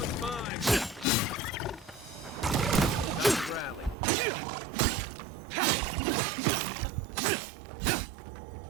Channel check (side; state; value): left; drops out; at 4.0 s